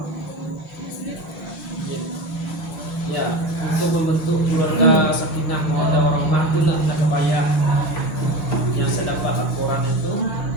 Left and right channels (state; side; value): late; right; 5.6 ms